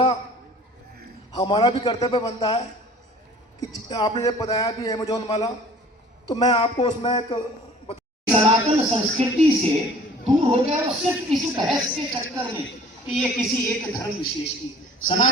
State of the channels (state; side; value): normal; both; correlation 0.49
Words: हमारा भी कर्तव्य बनता है कि आपने जब बताया भी अमेजोन वाला, तो मैं आपको उसमें एक सनातन संस्कृति से दूर हो गया और सिर्फ इस बहस के चक्कर में कि ये किसी एक धर्म विशेष की,